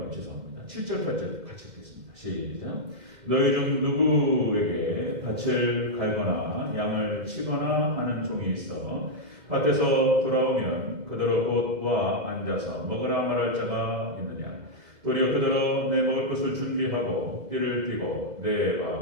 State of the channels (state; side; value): late; left; 2.1 ms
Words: 죄송합니다. 7절 8절 같이 읽겠습니다. 시작. 너희 중 누구에게 밭을 갈거나 양을 치거나 하는 종이 있어 밭에서 돌아오면 그대로 곧 와 앉아서 먹으라 말할 자가 있느냐. 도리어 그대로 내 먹을 것을 준비하고 띠를 띠고 내가